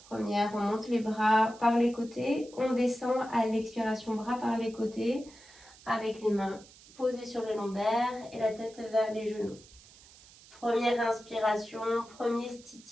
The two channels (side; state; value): right; noise; hiss, 23 dB below the sound